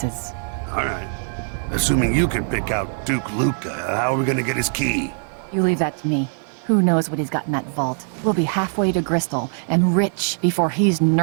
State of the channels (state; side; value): silent; left; 55 dB below the other